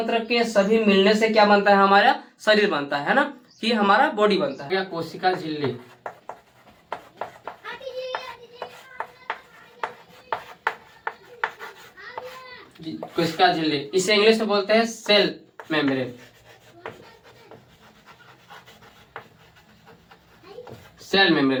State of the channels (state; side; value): identical; both; correlation 1.00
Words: के सभी मिलने से क्या बनता है? हमारा शरीर बनता है ना, कि हमारा बॉडी बनता है। कोशिका झिल्ली, कोशिका झिल्ली, इसे इंग्लिश में बोलते हैं सेल मेम्ब्रेन। सेल